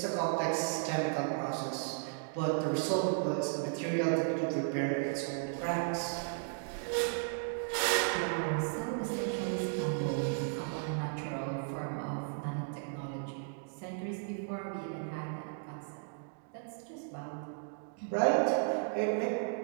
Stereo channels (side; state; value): left; silent; digital silence